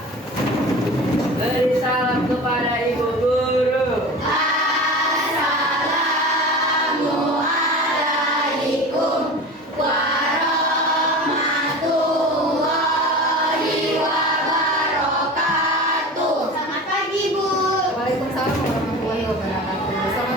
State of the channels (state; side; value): normal; both; correlation 0.34